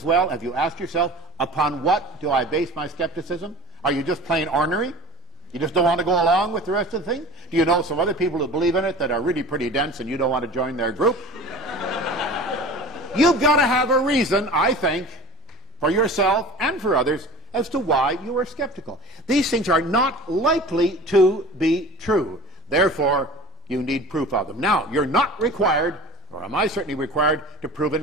well, have you asked yourself, upon what do I base my skepticism? Are you just plain ornery? You just don't want to go along with the rest of the thing? Do you know some other people who believe in it that are really pretty dense and you don't want to join their group? You've got to have a reason, I think, for yourself and for others as to why you are skeptical. These things are not likely to be true. Therefore, you need proof of them. Now, you're not required, or am I certainly required, to prove a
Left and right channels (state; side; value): normal; both; correlation 0.39